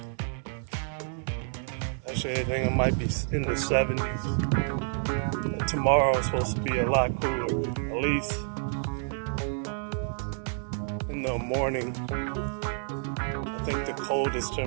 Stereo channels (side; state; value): left; silent; 59 dB below the other